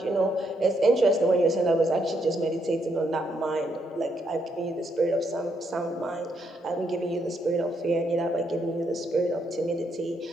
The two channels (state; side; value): normal; both; correlation 0.76